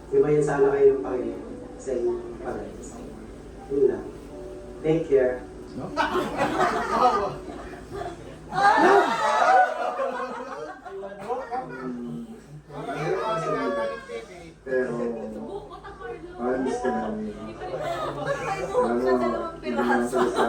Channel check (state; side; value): identical; both; correlation 1.00